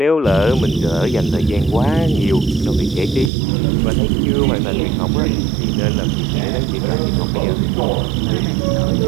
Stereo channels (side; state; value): left; drops out; at 3.3 s